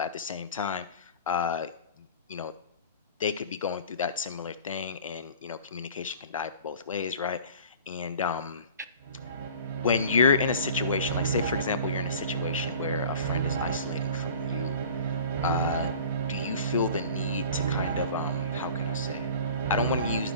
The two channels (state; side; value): inverted; both; correlation -0.43